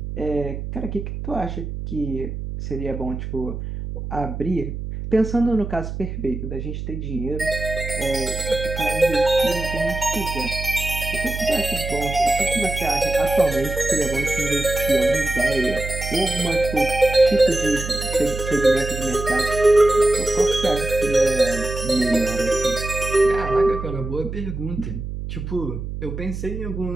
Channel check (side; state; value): right; noise; hum, 6 dB below the sound